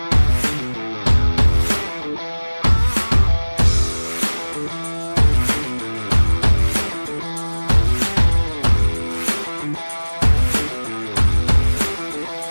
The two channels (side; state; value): both; inverted; correlation -1.00